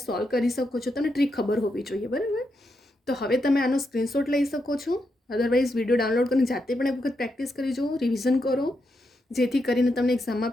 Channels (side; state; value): both; normal; correlation 0.83